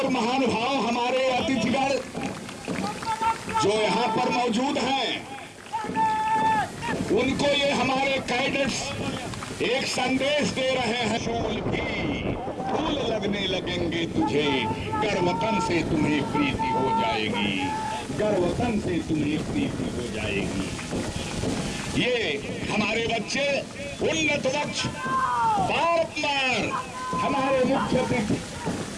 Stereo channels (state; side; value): identical; both; correlation 1.00